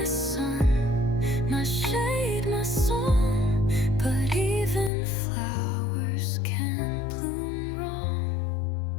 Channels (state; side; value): drops out; right; at 4.9 s